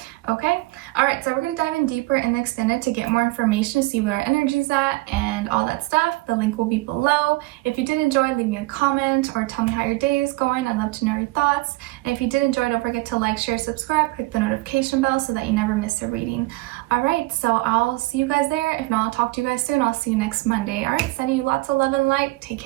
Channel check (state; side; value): quieter; left; 21.8 dB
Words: Okay, all right, so we're gonna dive in deeper in the extended to get more information, to see where our energy's at and all that stuff. The link will be below. If you did enjoy, leave me a comment or tell me how your day is going. I'd love to know your thoughts. And if you did enjoy, don't forget to like, share, subscribe, click the notification bell so that you never miss a reading. All right, so I'll see you guys there. If not, I'll talk to you guys soon. I'll see you next Monday. All right, sending you lots of love and light. Take